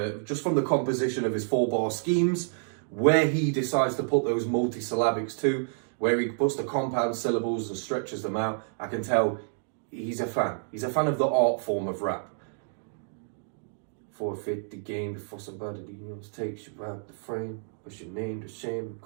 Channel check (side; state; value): left; silent; digital silence